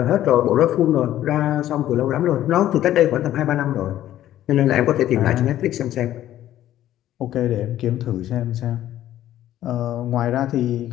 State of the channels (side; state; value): right; quieter; 12.8 dB